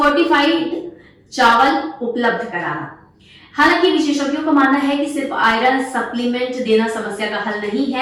चावल उपलब्ध कराना। हालांकि विशेषज्ञों का मानना है कि सिर्फ आयरन सप्लीमेंट देना समस्या का हल नहीं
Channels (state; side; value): identical; both; correlation 1.00